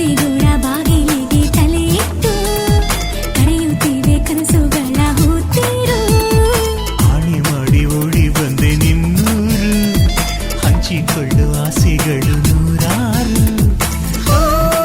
ಬಾಗಿಲಿಗೆ ತಲೆ ಇಟ್ಟು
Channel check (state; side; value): identical; both; correlation 1.00